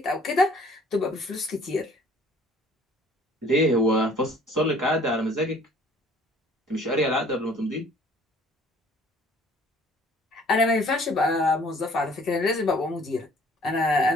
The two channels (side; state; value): both; normal; correlation 0.55